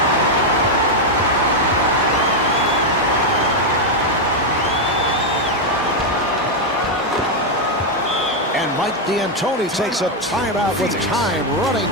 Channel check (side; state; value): both; normal; correlation 0.01